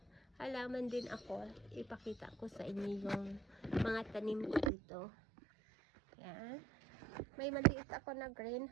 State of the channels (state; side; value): drops out; left; at 4.7 s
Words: halaman din ako. Ipakita ko sa inyo yung mga tanim ko dito. Yan. May maliit ako na